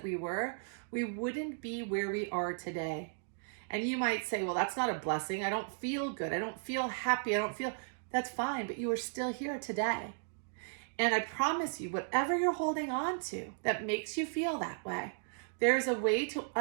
we were, we wouldn't be where we are today. And you might say, well, that's not a blessing. I don't feel good. I don't feel happy. That's fine, but you are still here today. And I promise you, whatever you're holding on to that makes you feel that way, there's a way to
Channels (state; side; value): silent; left; digital silence